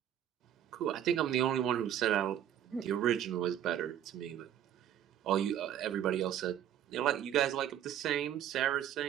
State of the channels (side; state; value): left; quieter; 10.6 dB